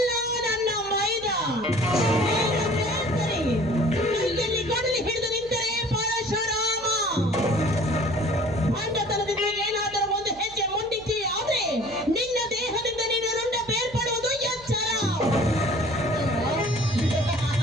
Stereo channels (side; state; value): right; noise; hum, 22 dB below the sound